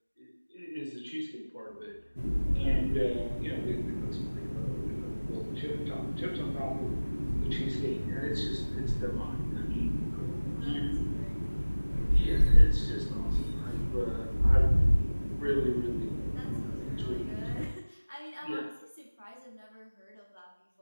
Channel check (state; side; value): inverted; both; correlation -1.00